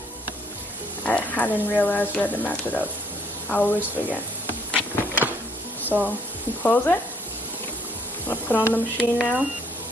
I didn't realize we had to match it up. I always forget. So you close it. I'm gonna put on the machine now.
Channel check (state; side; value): normal; both; correlation 0.64